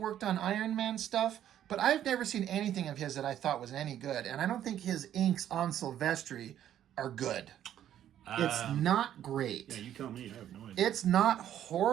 on Iron Man stuff, but I've never seen anything of his that I thought was any good, and I don't think his inks on Silvestri are good. It's not great. Yeah, you tell me. I have no idea. It's not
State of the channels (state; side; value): quieter; left; 11.0 dB